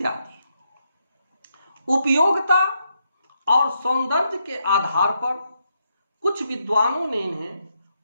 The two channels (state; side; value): inverted; both; correlation -0.80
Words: उपयोगिता और सौंदर्य के आधार पर कुछ विद्वानों ने इन्हें